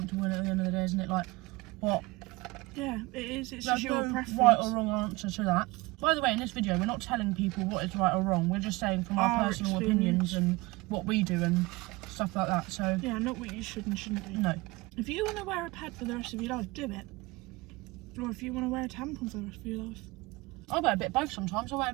in at the end of the day, isn't it? Like, what? Yeah, it is. It's There's just your no preference. right or wrong answer to that. By the way, in this video, we're not telling people what is right or wrong. We're just saying from our personal opinions and what we do and stuff like that. So yeah, not what you should and shouldn't do. no. If you want to wear a pad for the rest of your life, do it. Or if you want to wear a tampon for the rest of your life. I wear a bit of both sometimes. I wear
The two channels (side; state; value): left; quieter; 22.7 dB